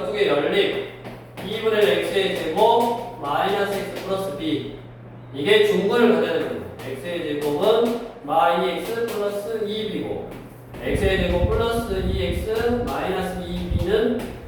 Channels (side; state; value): both; identical; correlation 1.00